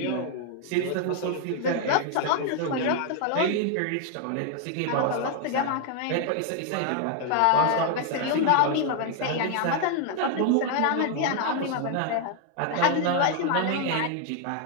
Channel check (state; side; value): different; both; correlation 0.00